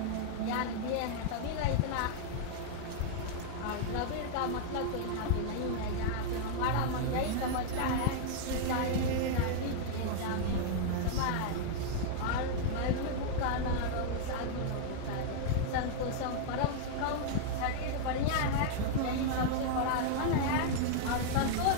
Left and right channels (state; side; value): different; both; correlation -0.01